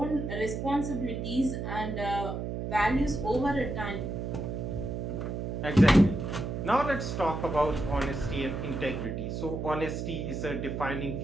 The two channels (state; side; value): noise; right; hum, 4 dB below the sound